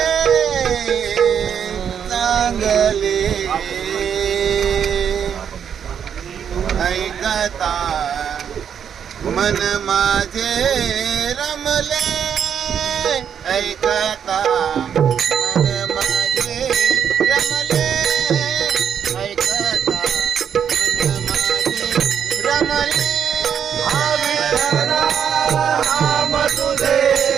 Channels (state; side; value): quieter; left; 8.1 dB